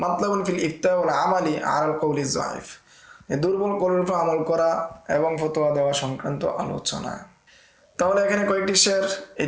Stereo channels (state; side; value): identical; both; correlation 1.00